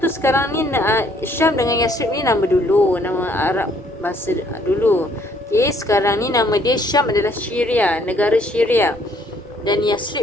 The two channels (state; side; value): normal; both; correlation 0.64